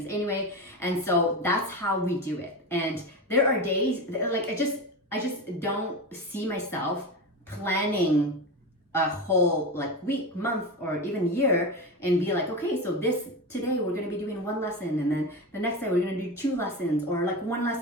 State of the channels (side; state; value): both; normal; correlation 0.22